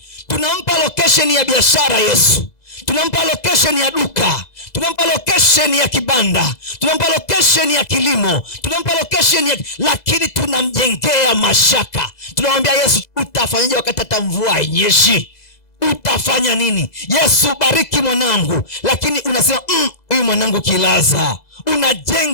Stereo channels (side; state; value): right; late; 2.0 ms